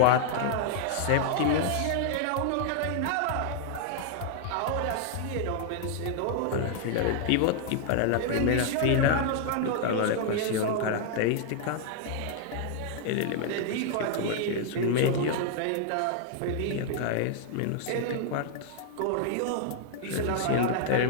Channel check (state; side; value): different; both; correlation 0.00